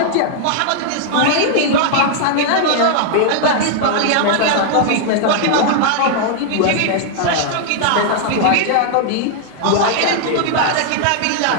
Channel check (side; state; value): both; different; correlation 0.00